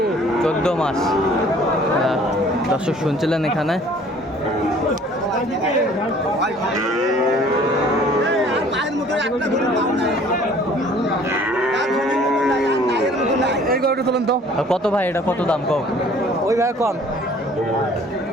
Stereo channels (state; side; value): normal; both; correlation 0.54